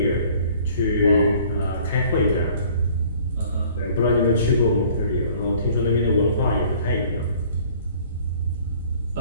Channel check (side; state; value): both; inverted; correlation -0.54